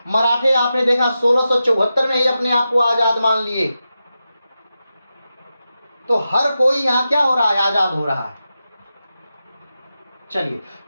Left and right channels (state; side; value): inverted; both; correlation -0.90